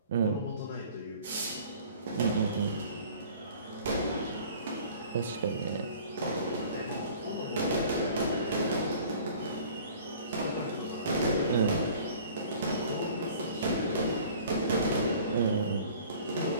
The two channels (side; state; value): both; inverted; correlation -0.49